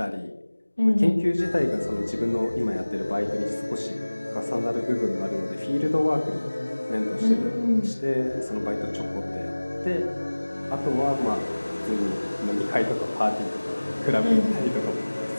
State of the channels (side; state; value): both; inverted; correlation -1.00